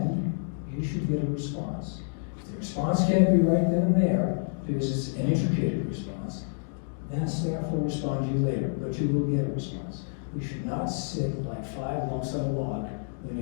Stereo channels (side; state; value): right; silent; digital silence